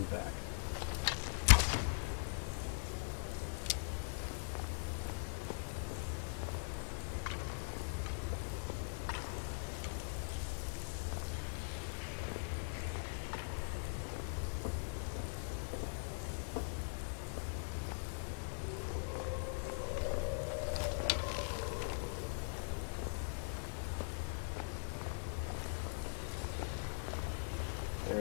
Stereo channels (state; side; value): silent; right; digital silence